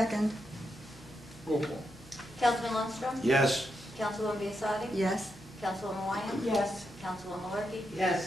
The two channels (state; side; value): normal; both; correlation 0.84